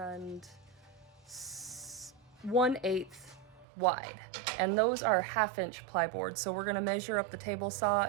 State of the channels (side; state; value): left; drops out; at 3.7 s